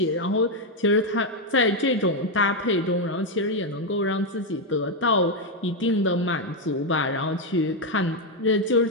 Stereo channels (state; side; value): normal; both; correlation 0.03